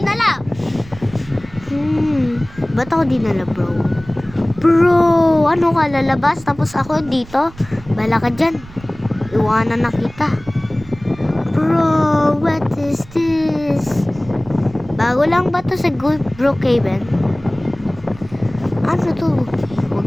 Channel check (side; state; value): right; noise; rumble, 20 dB below the sound